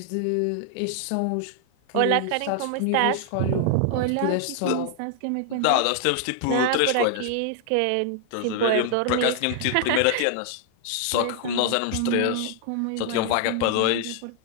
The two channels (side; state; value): both; different; correlation 0.00